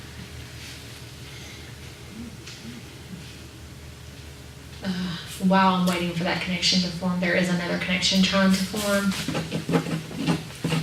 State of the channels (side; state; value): both; identical; correlation 1.00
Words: While I'm waiting for that connection to form, there is another connection trying to form.